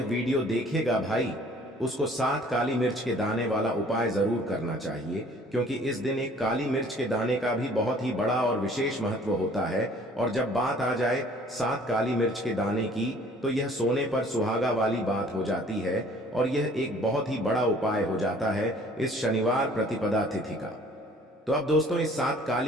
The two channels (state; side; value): normal; both; correlation 0.54